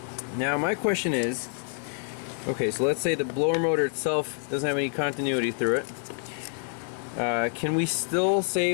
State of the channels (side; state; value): right; silent; 60 dB below the other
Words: Now my question is, okay, so let's say the blower motor itself doesn't have any continuity through it. Can we still say